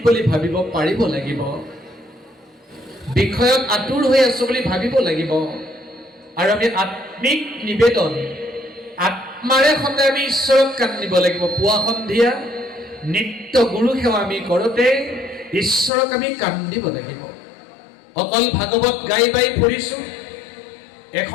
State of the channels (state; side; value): drops out; right; at 15.9 s